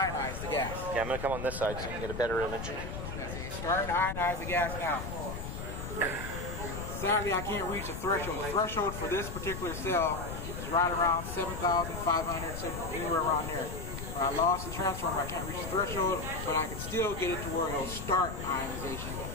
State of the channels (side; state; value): left; noise; rumble, 7 dB below the sound